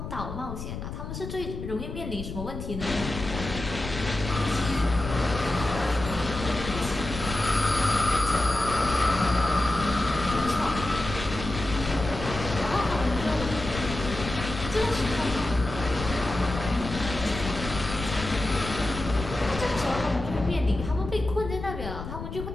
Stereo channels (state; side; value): noise; left; rumble, 8 dB below the sound